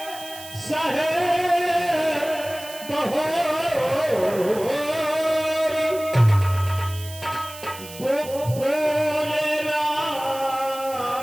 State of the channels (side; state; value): right; noise; hiss, 15 dB below the sound